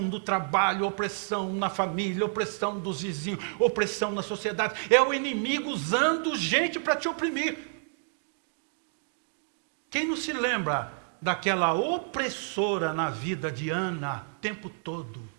no trabalho, opressão na família, opressão dos vizinhos, opressão na sociedade? É o inimigo usando gente para te oprimir. Quem não se lembra daquela opressora na vida de Ana, o tempo todo,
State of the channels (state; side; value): silent; left; 58 dB below the other